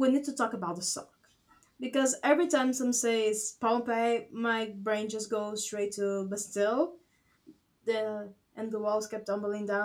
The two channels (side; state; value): both; identical; correlation 1.00